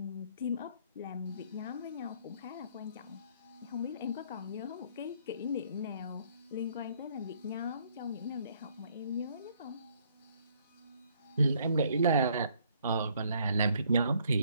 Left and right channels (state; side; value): inverted; both; correlation -0.65